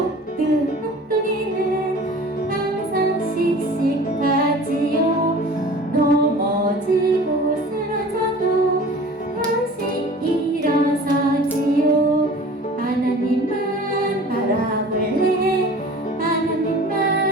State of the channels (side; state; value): both; normal; correlation 0.43